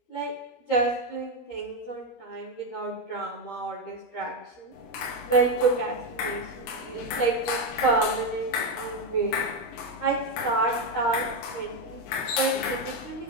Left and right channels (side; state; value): right; late; 13 ms